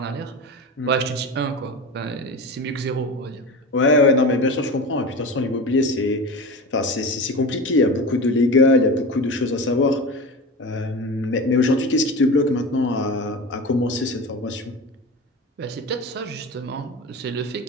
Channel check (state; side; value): normal; both; correlation 0.29